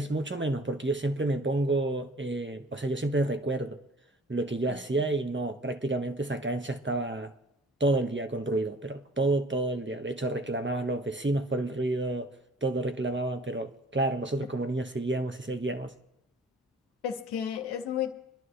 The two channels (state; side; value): normal; both; correlation 0.49